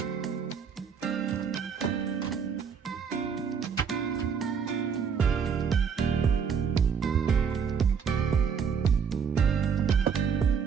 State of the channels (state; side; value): quieter; left; 6.6 dB